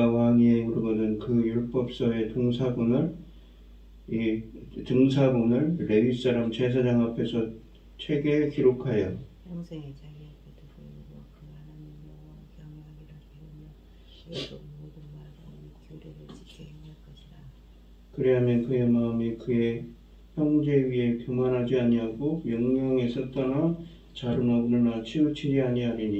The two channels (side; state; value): both; identical; correlation 1.00